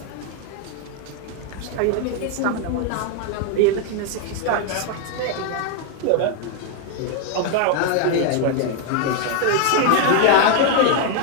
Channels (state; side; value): different; both; correlation 0.01